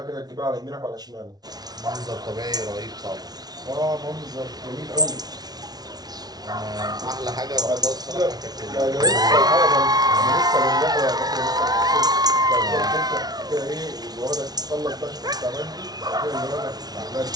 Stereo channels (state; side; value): late; left; 0.19 ms